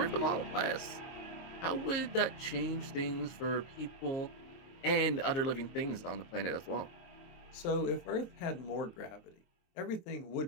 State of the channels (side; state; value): right; late; 22 ms